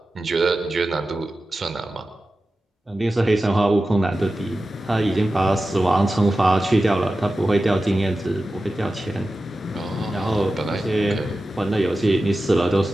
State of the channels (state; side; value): normal; both; correlation 0.94